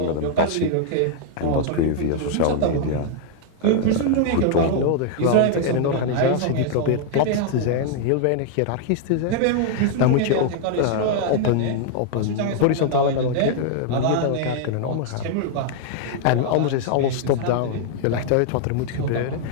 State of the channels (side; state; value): both; different; correlation 0.00